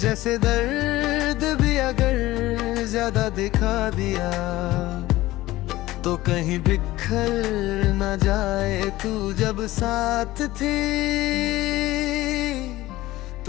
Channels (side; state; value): right; quieter; 17.2 dB